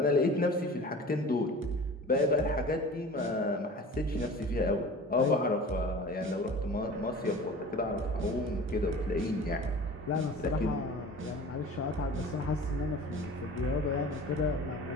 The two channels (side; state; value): both; normal; correlation 0.40